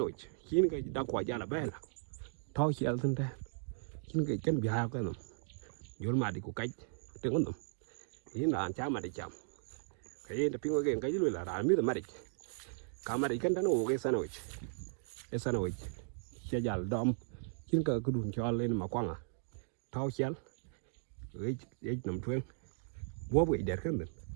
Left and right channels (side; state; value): left; silent; digital silence